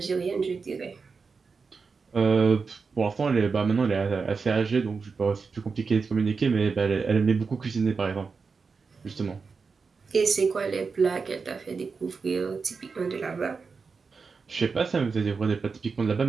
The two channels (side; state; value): left; quieter; 4.9 dB